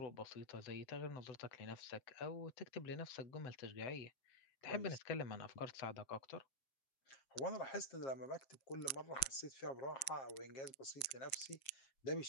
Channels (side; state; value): right; late; 7.1 ms